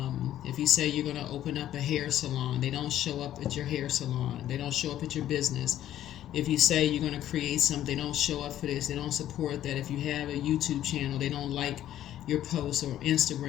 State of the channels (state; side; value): quieter; right; 12.2 dB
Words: if you say you're going to open up a hair salon, they don't show up at your hair salon. They don't show up at your business. If you say you're going to create something, they don't show up for this. They don't support that. If you have a YouTube channel, they don't like your posts, or